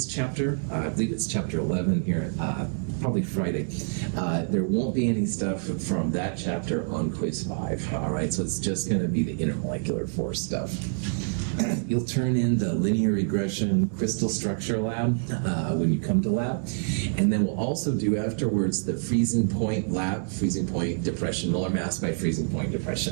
chapter. I believe it's chapter 11 here, probably Friday. There won't be any stuff from that chapter on quiz 5. All right, so it's just going to be the intermolecular force stuff. You'll turn in the linear regression crystal structure lab when you come to lab. And then we'll also do afterwards the freezing point lab, freezing point depression, molar mass by freezing point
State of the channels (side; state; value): left; silent; digital silence